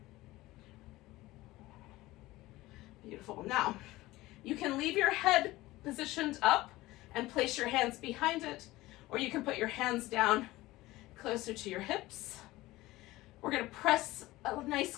Beautiful. Now, you can leave your head positioned up and place your hands behind it, or you can put your hands down closer to your hips. We're going to press a nice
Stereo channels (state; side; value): quieter; right; 18.4 dB